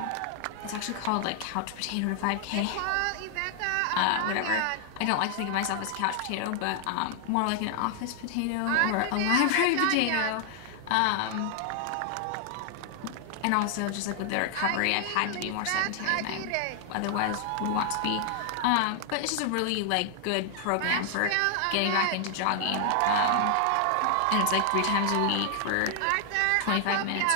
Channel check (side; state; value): both; different; correlation 0.00